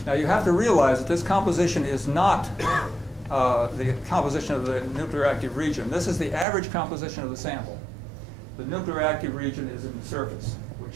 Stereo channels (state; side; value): drops out; left; at 6.5 s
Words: Now you have to realize that this composition is not the composition of the nuclear active region. This is the average composition of the sample. The nuclear active region is in the surface,